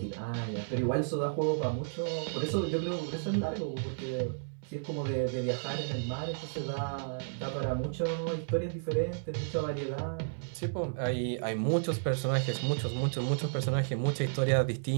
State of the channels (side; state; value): left; silent; 56 dB below the other